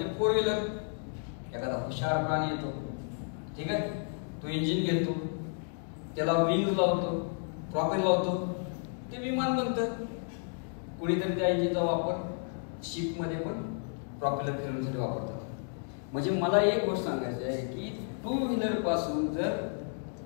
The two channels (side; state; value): right; silent; 56 dB below the other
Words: 4 व्हीलर. एखादा हुशार प्राणी येतो, ठीक आहे, तो इंजिन घेतो, त्याला विंग लावतो, प्रॉपेलर लावतो, ते विमान बनतं. कुणीतरी त्या इंजिनचा वापर शिपमध्ये पण प्रॉपेलर फिरवण्यासाठी वापरतात. म्हणजे मला एक गोष्ट सांगायची आहे की 2 व्हीलर पासून जर